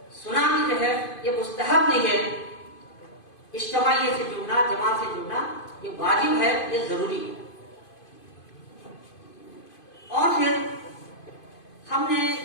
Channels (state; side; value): late; right; 2.5 ms